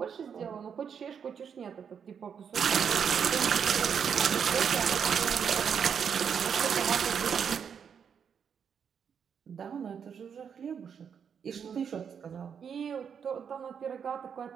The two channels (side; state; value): left; quieter; 7.2 dB